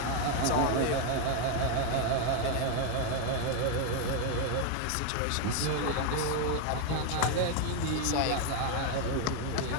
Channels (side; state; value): both; different; correlation 0.01